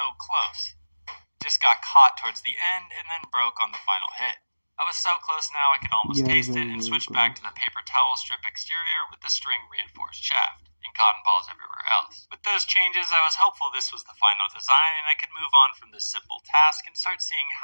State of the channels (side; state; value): both; inverted; correlation -1.00